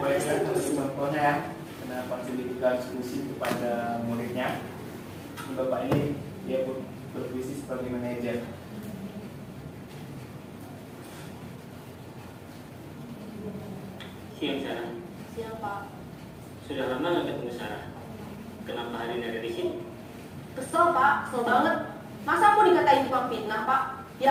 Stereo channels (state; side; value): identical; both; correlation 1.00